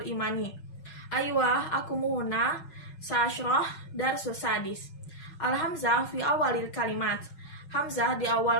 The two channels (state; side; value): late; right; 5.4 ms